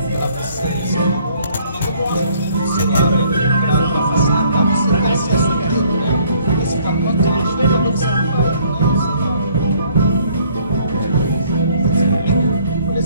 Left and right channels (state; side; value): inverted; both; correlation -0.61